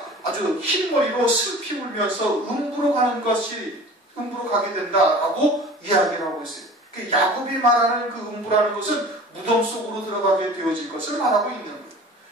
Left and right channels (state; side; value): normal; both; correlation 0.42